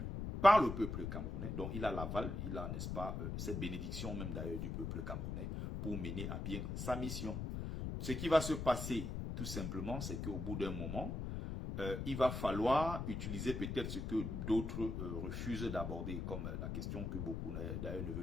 par le peuple camerounais, donc il a l'aval, il a, n'est-ce pas, cette bénédiction même d'ailleurs du peuple camerounais pour mener à bien sa mission. Ce qui va se passer, tout simplement, c'est qu'au bout d'un moment, il va falloir utiliser peut-être ce que d'autres refusent d'aborder, comme la question que beaucoup d'ailleurs ne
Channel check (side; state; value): left; noise; rumble, 4 dB below the sound